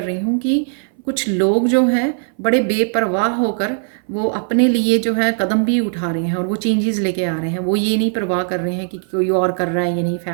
रही हूँ कि कुछ लोग जो हैं बड़े बेपरवाह होकर वो अपने लिए जो है कदम भी उठा रहे हैं और वो चेंजेस लेके आ रहे हैं। वो ये नहीं परवाह कर रहे हैं कि कोई और कर रहा है या नहीं,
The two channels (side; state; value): left; silent; 61 dB below the other